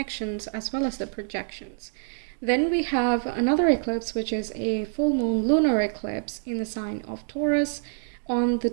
as well as the projections. Then we have another eclipse, which is a full moon lunar eclipse in the sign of Taurus on the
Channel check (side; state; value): left; silent; digital silence